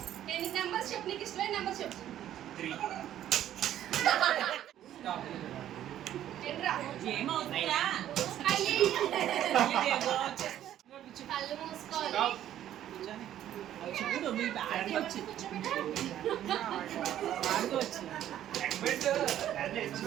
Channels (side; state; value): left; quieter; 11.7 dB